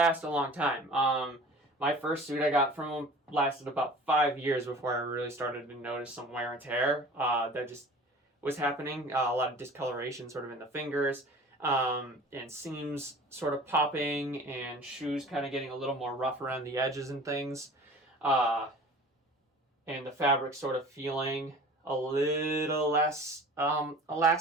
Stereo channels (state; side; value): normal; both; correlation 0.43